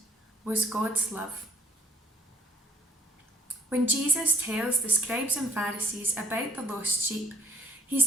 was God's love. When Jesus tells the scribes and Pharisees about the lost sheep,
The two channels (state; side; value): normal; both; correlation 0.57